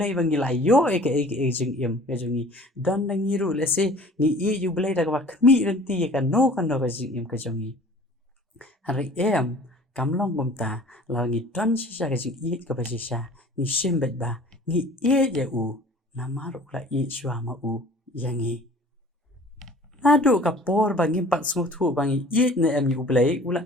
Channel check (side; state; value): both; normal; correlation 0.47